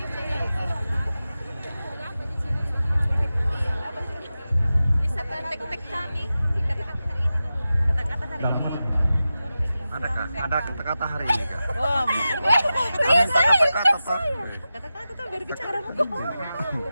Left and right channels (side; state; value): both; inverted; correlation -0.93